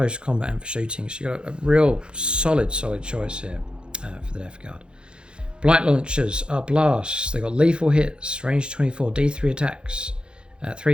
combat and for shooting. So you've got a real solid choice here for the Death Guard. Blight launchers are blasts. They've got lethal hits, range 24, D3 attacks,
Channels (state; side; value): late; left; 0.052 ms